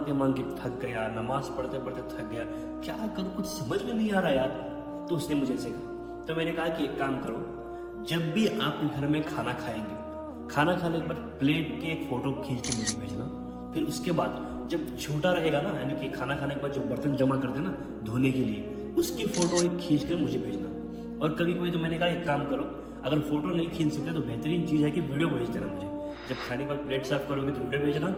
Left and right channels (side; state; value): both; identical; correlation 1.00